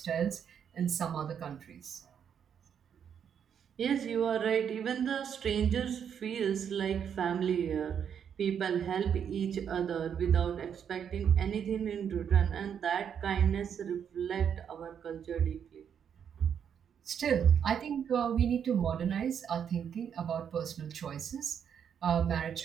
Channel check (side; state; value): left; quieter; 8.1 dB